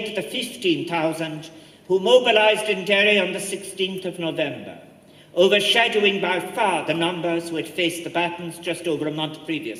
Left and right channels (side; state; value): both; identical; correlation 1.00